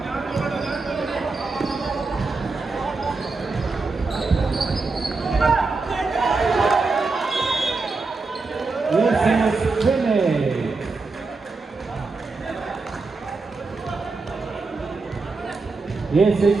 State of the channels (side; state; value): left; quieter; 4.0 dB